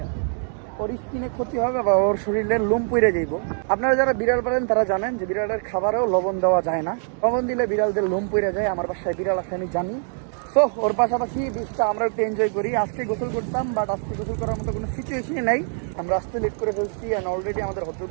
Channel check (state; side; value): silent; left; 56 dB below the other